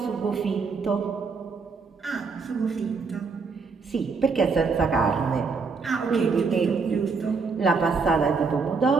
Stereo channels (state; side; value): quieter; left; 4.8 dB